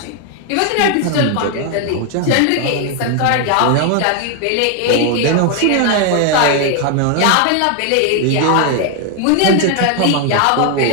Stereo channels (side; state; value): both; different; correlation 0.00